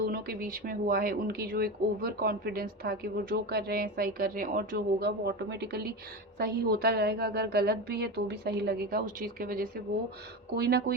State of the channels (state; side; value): normal; both; correlation 0.22